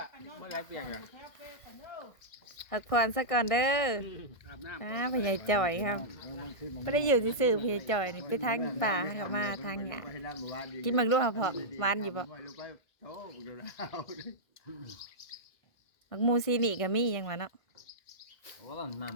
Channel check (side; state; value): right; late; 1.5 ms